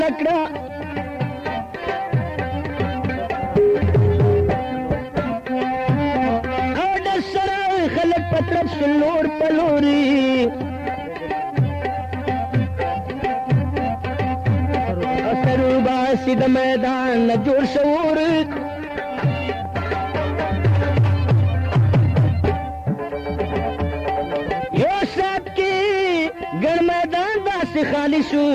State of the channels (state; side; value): identical; both; correlation 1.00